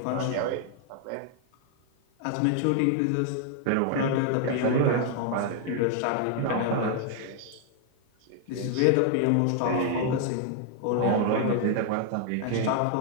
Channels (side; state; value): both; different; correlation 0.00